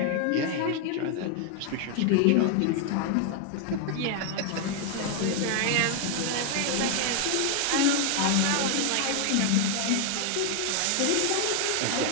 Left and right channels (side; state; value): both; different; correlation 0.00